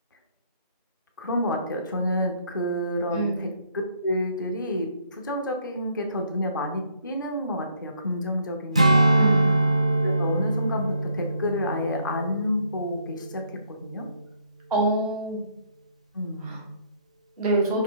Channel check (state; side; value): inverted; both; correlation -0.69